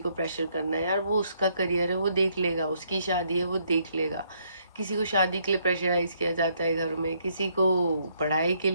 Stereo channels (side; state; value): both; inverted; correlation -0.71